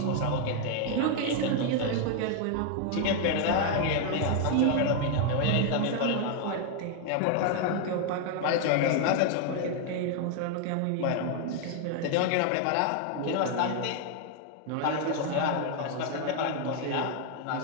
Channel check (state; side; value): different; both; correlation 0.00